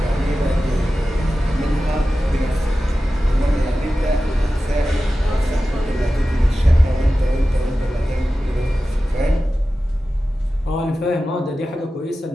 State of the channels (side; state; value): both; normal; correlation 0.94